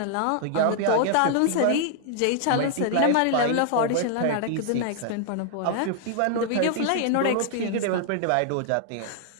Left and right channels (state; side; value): different; both; correlation 0.00